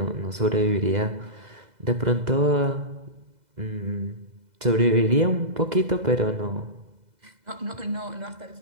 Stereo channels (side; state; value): left; late; 2.0 ms